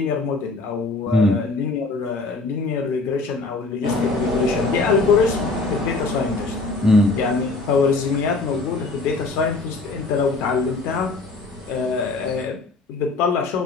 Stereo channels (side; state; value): right; quieter; 3.6 dB